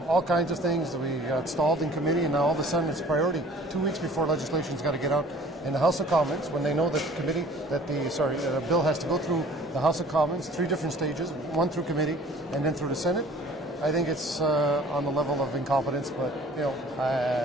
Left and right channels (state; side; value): normal; both; correlation 0.50